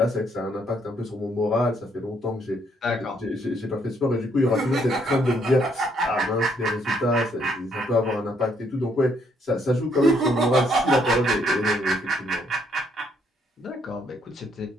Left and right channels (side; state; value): both; normal; correlation 0.70